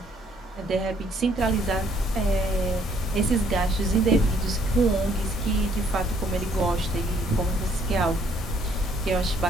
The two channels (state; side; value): normal; both; correlation 0.65